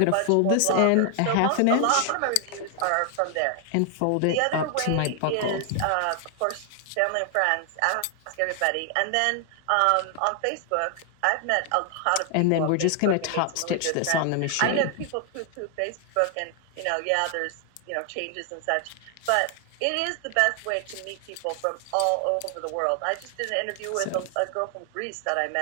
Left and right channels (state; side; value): different; both; correlation 0.00